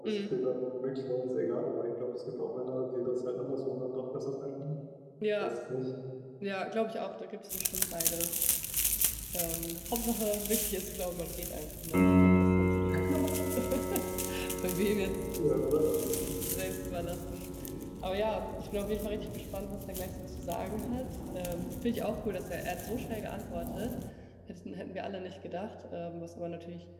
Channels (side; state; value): both; identical; correlation 1.00